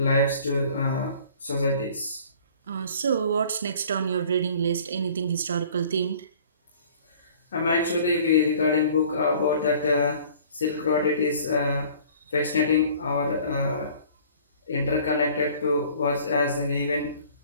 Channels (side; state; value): both; inverted; correlation -0.51